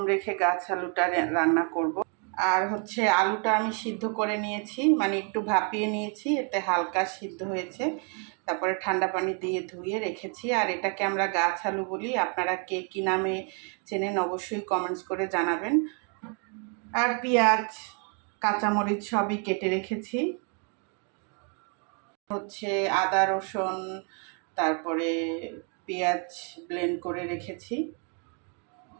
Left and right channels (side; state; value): left; quieter; 38.8 dB